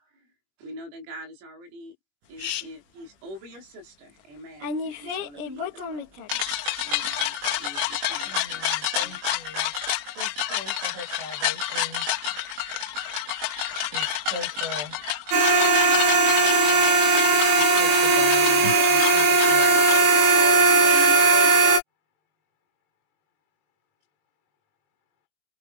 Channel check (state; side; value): late; left; 21 ms